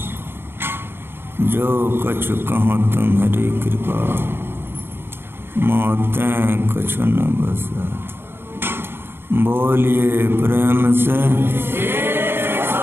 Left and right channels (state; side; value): late; left; 0.11 ms